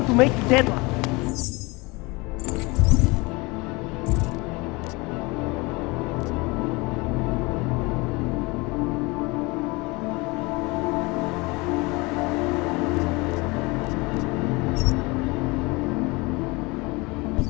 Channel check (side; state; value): right; quieter; 25.2 dB